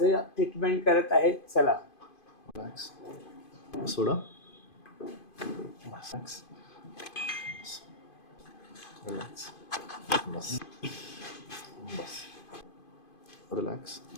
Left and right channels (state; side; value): late; right; 2.5 ms